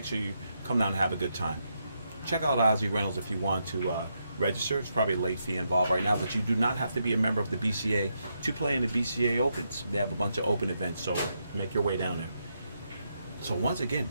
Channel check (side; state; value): both; inverted; correlation -0.81